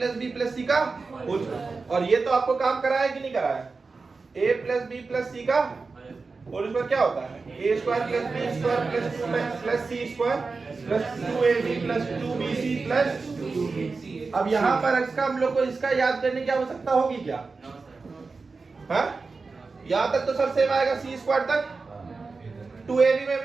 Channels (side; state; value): left; quieter; 4.2 dB